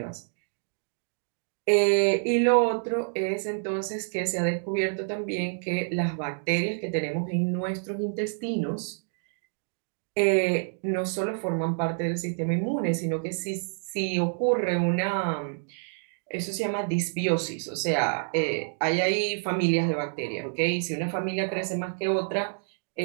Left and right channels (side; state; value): left; silent; digital silence